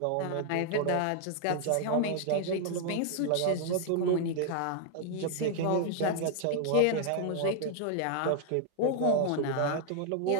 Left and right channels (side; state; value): both; different; correlation 0.00